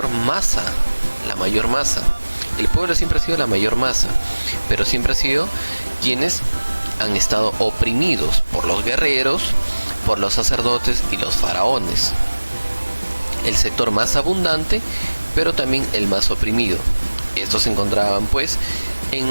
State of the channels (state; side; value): inverted; both; correlation -1.00